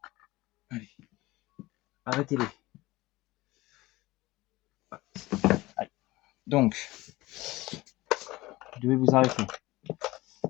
Allez. Arrêtez-les. Allez. Donc, vous devez vous arrêter.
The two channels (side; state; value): right; quieter; 19.6 dB